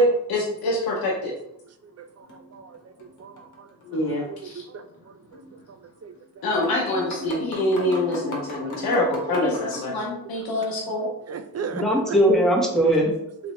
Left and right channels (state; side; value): normal; both; correlation 0.33